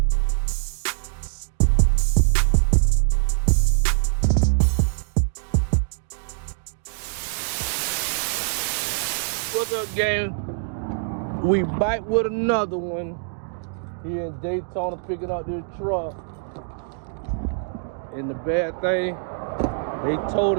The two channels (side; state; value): left; silent; digital silence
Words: What's up, gang? We bite with another one here in Daytona, picking up this truck. And the bad thing, they told